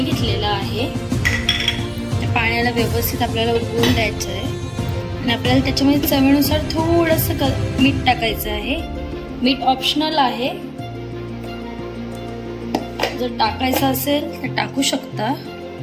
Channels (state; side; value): identical; both; correlation 1.00